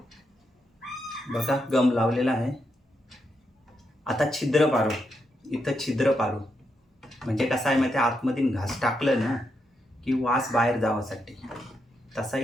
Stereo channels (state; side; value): normal; both; correlation 0.82